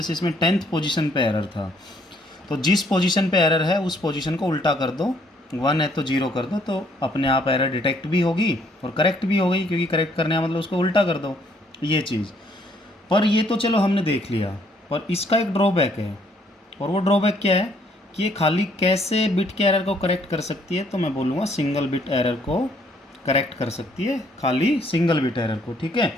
इसमें 10th पोजीशन पे एरर था, तो जिस पोजीशन पे एरर है उस पोजीशन को उल्टा कर दो, 1 है तो 0 कर दो, तो अपने आप एरर डिटेक्ट भी होगी और करेक्ट भी हो गई, क्योंकि करेक्ट करने का मतलब उसको उल्टा कर दो, ये चीज़। पर ये तो चलो हमने देख लिया, पर इसका एक ड्रॉबैक है, और वो ड्रॉबैक क्या है कि ये खाली कैसे बिट के एरर को करेक्ट कर सकती है, तो मैं बोलूँगा सिंगल बिट एरर को करेक्ट कर सकती है, खाली सिंगल बिट एरर को, ठीक है।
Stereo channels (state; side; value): normal; both; correlation 0.66